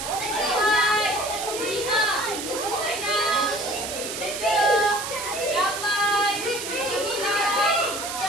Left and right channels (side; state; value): right; noise; hiss, 6 dB below the sound